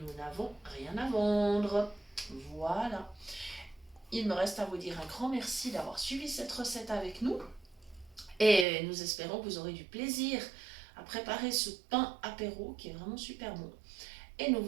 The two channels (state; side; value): drops out; left; at 8.7 s